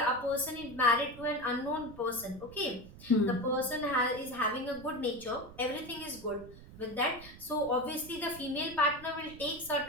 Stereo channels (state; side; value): noise; right; rumble, 17 dB below the sound